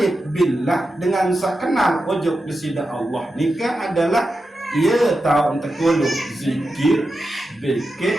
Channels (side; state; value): both; normal; correlation 0.90